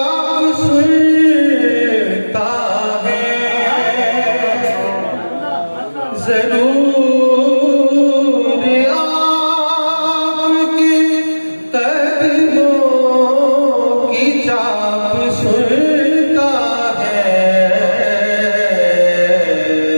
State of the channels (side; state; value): both; inverted; correlation -1.00